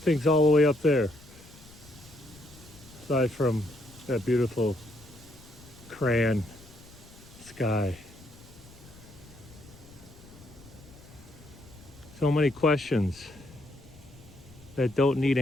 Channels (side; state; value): left; noise; rumble, 21 dB below the sound